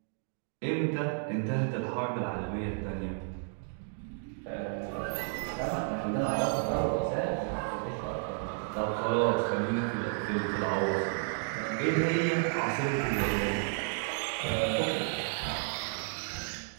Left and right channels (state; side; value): silent; left; 56 dB below the other